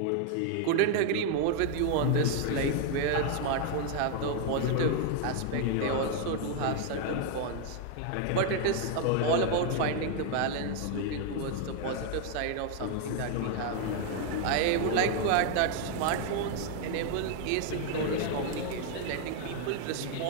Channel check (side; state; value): both; different; correlation 0.00